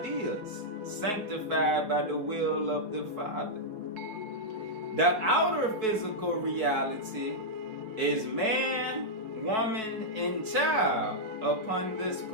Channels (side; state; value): left; late; 4.6 ms